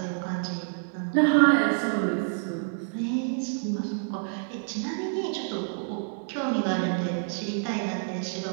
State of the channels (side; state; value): left; silent; digital silence